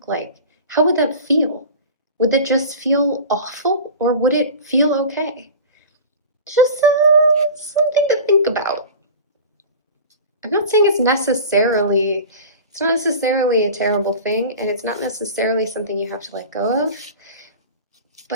like? How would that feel? Would it just feel awful, or would it feel okay? Just something to think about. I'm not saying it's not necessarily a terrible thing, and it's not necessarily something you have to let go of.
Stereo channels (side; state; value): both; inverted; correlation -0.35